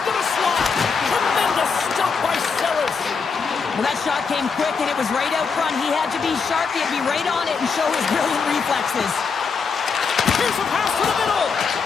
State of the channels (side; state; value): right; quieter; 5.3 dB